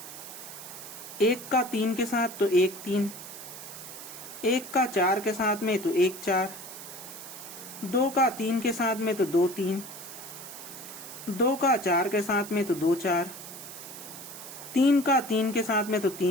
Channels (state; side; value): noise; right; hiss, 12 dB below the sound